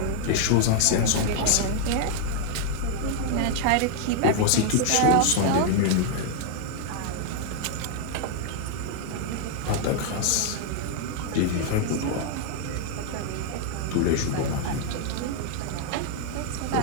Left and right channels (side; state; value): both; different; correlation 0.00